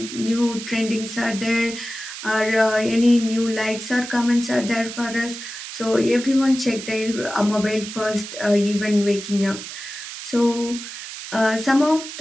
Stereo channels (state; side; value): noise; right; hiss, 10 dB below the sound